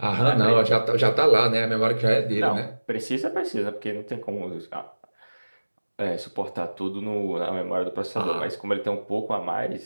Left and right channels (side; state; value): both; inverted; correlation -1.00